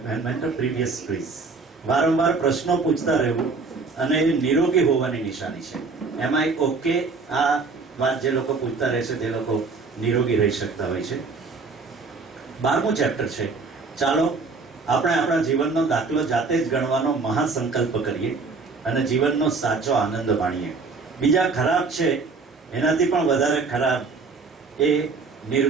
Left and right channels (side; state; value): left; quieter; 4.3 dB